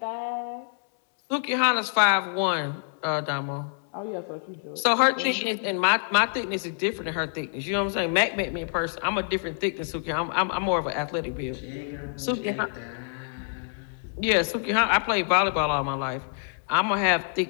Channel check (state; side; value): silent; right; digital silence